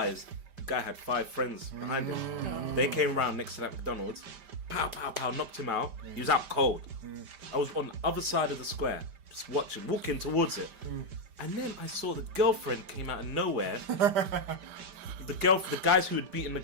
the guy had 5 friends behind him. They came around next to that McDonald's, pow pow pow, knocked him out. He was out cold. I was on the other side of the square, just watching, walking towards it, and then I saw the girlfriend came out of nowhere. The guys who had beaten the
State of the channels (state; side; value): late; left; 5.1 ms